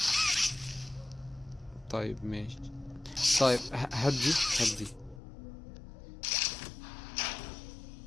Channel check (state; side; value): drops out; right; at 5.2 s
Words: طيب ماشي. طيب هات دي، هات دي.